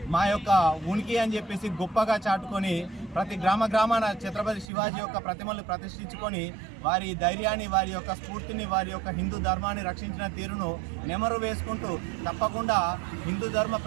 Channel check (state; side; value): drops out; left; at 4.7 s